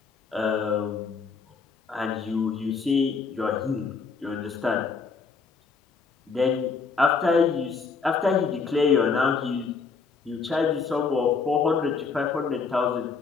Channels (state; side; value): quieter; right; 5.0 dB